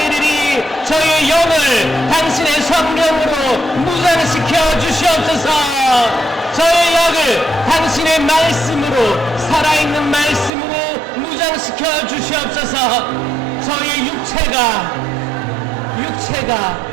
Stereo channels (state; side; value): drops out; left; at 10.5 s